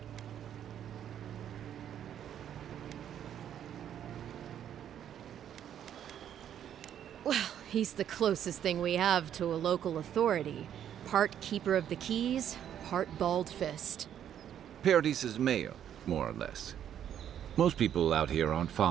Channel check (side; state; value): left; quieter; 9.9 dB